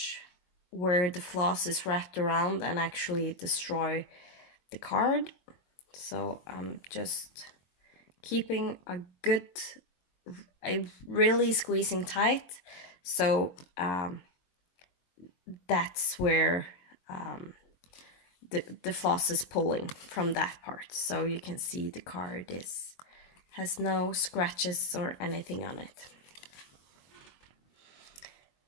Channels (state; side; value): late; right; 22 ms